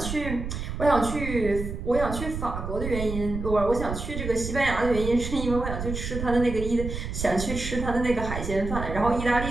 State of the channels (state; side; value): noise; right; rumble, 5 dB below the sound